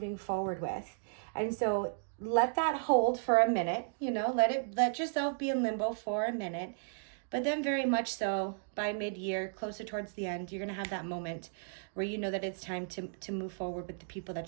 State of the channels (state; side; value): silent; left; digital silence